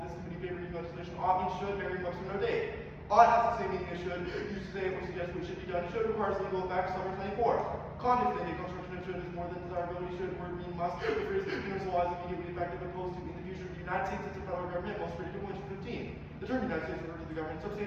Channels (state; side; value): identical; both; correlation 1.00